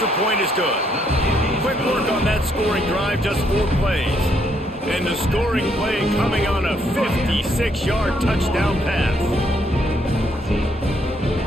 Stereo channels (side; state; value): both; normal; correlation 0.72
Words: point is good. Quick work on that scoring drive, just 4 plays. And the scoring play coming on a 56-yard touchdown pass.